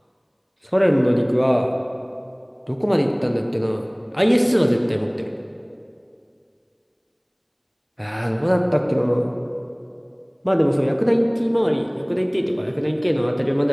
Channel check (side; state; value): both; identical; correlation 1.00